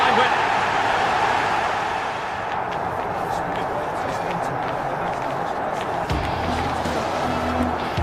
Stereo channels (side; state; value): both; identical; correlation 1.00